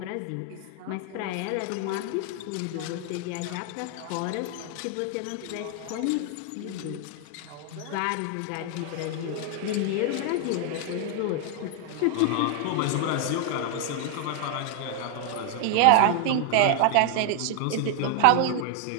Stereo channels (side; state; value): both; different; correlation 0.00